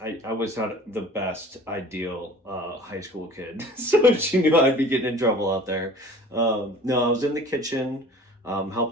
I was not the best ideal high school kid, so she knew I'd be getting in trouble out there. No, I was in the kitchen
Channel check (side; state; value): both; normal; correlation 0.45